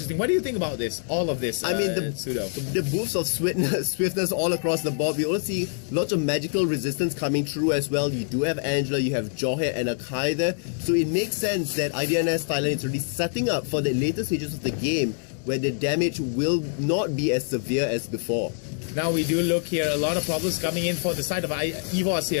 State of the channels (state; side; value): silent; right; digital silence